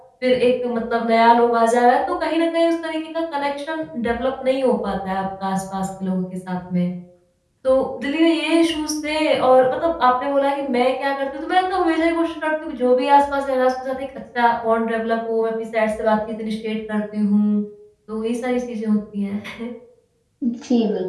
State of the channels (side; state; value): both; identical; correlation 1.00